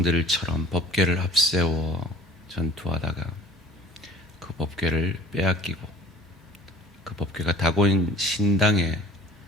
법궤를 앞세워 전투하다가 그 법궤를 빼앗기고 그 법궤가 다곤 신당에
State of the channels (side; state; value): both; normal; correlation 0.49